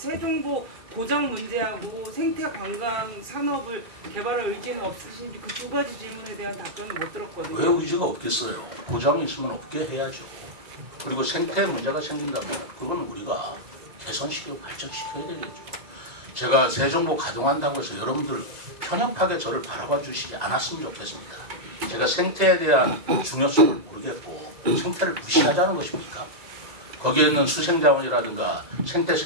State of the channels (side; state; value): left; late; 2.0 ms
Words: 고장 문제하고 생태 관광 산업을 개발할 의지는 없으신지 그 두 가지 질문에 대한 답변을 못 들었거든요. 왜 의지가 없겠어요? 고장이 있으면 없게 해야죠. 그리고 생태 문제가 생긴다면 그건 우리가 개선시키고 발전시켜야 되겠죠. 제가 세종보 가동한다고 해서 여러분들 편협하게 저를 바라봐 주시지 않았으면 좋겠습니다. 제가 생태에 대한 중요성을 모르겠고 생태를 무시하자는 것입니까? 거기에 있는 수생자원이라든가 생태